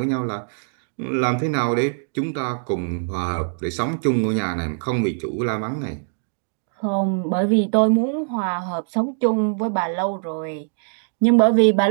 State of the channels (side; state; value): left; silent; digital silence